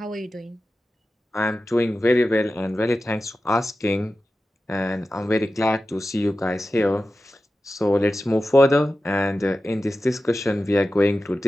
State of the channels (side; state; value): both; normal; correlation 0.93